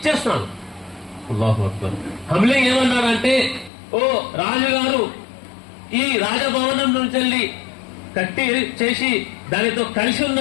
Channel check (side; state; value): right; drops out; at 3.7 s